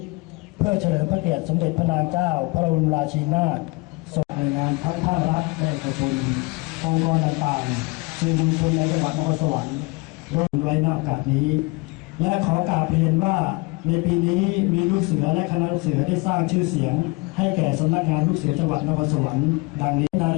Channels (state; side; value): quieter; right; 25.9 dB